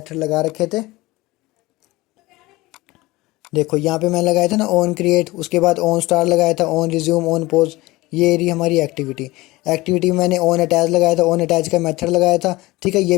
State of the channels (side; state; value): right; quieter; 20.2 dB